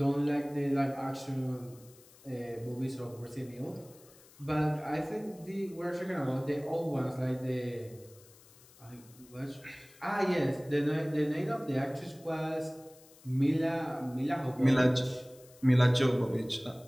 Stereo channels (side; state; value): left; noise; hiss, 25 dB below the sound